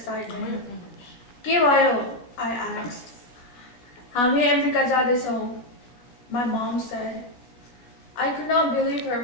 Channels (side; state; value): right; late; 16 ms